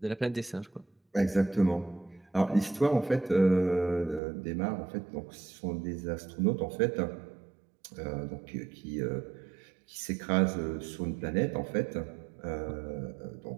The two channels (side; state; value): left; drops out; at 4.2 s